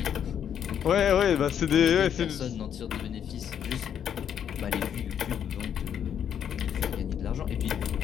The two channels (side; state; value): right; quieter; 8.8 dB